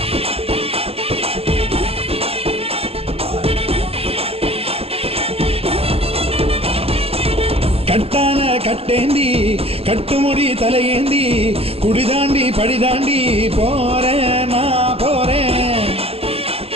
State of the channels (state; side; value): late; left; 0.28 ms